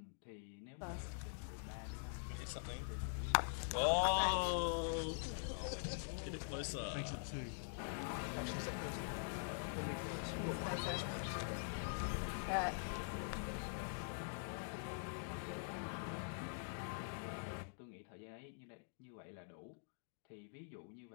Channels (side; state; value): right; silent; digital silence